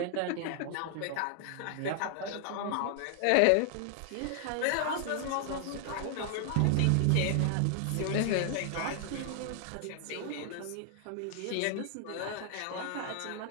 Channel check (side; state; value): both; different; correlation 0.00